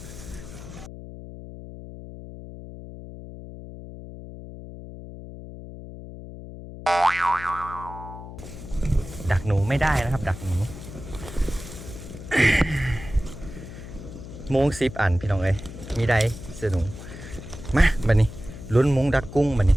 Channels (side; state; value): left; noise; hum, 13 dB below the sound